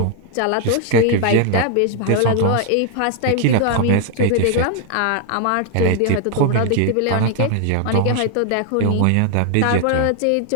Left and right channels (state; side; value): different; both; correlation 0.00